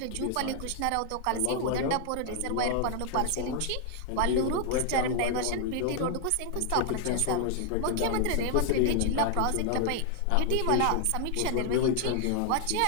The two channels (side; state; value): both; different; correlation 0.00